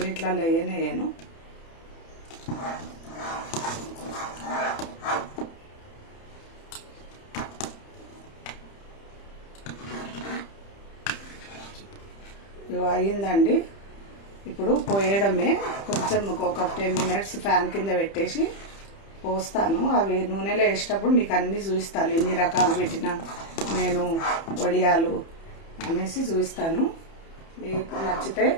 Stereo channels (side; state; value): right; late; 30 ms